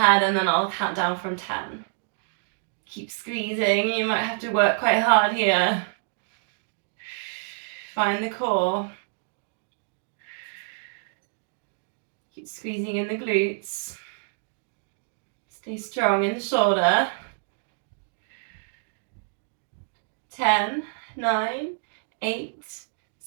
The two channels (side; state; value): left; silent; digital silence